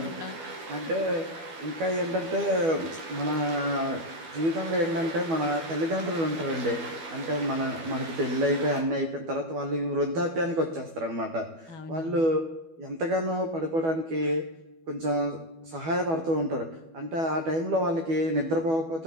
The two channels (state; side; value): late; left; 12 ms